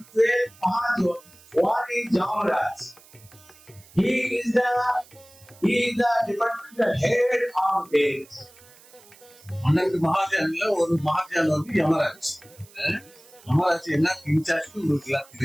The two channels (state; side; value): noise; right; hiss, 25 dB below the sound